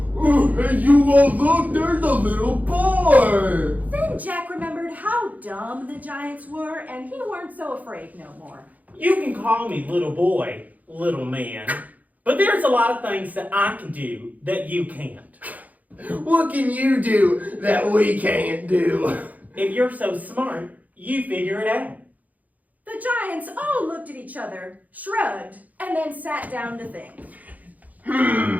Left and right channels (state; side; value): late; left; 0.078 ms